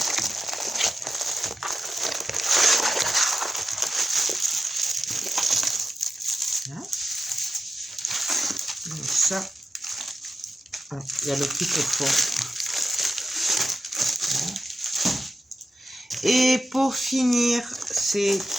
Donc ça, il y a le petit pot. Et pour finir, c'est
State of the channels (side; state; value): both; normal; correlation 0.91